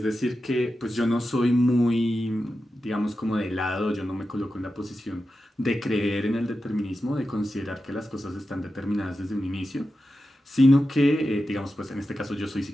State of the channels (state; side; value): normal; both; correlation 0.91